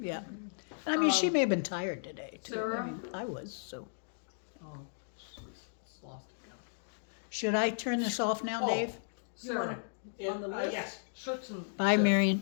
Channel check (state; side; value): silent; right; digital silence